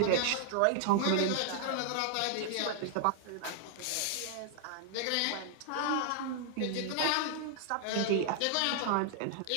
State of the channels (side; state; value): both; different; correlation 0.00